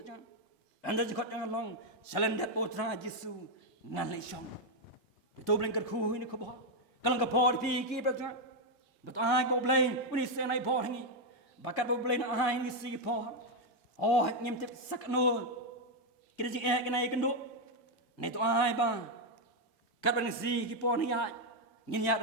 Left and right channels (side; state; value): both; normal; correlation 0.02